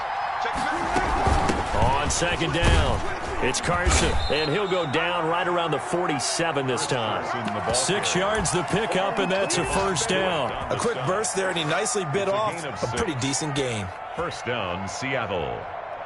On 2nd down, it's Carson, and he'll go down right around the 47 this time. 6 yards the pickup, and that's a 1st down. A quick burst there, and he nicely bit off a pretty decent gain. 1st down, Seattle.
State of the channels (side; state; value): both; identical; correlation 1.00